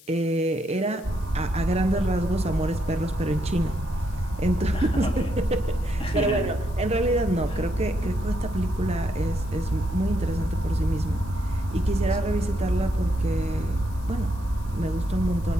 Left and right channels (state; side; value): noise; left; hiss, 24 dB below the sound